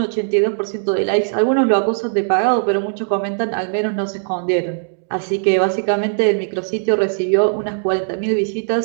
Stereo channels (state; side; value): silent; left; digital silence